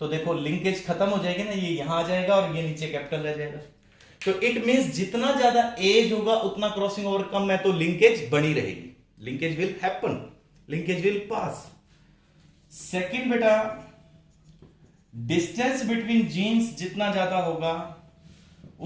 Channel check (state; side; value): identical; both; correlation 1.00